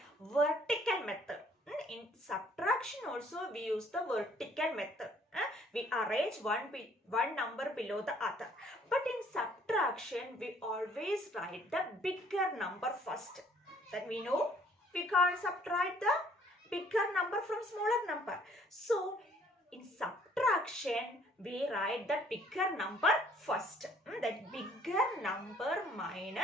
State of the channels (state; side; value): normal; both; correlation 0.60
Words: Vertical method. In subtraction also we use the vertical method. We arrange one number below the other. But in subtraction we always write the bigger number first. That we know we can't subtract the bigger number from smaller number. So in subtraction we write the bigger number first. That bigger number